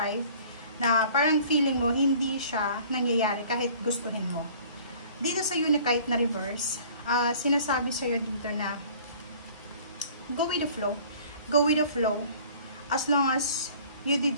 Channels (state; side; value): inverted; both; correlation -0.50